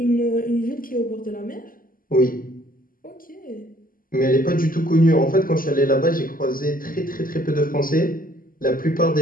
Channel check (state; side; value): late; right; 0.41 ms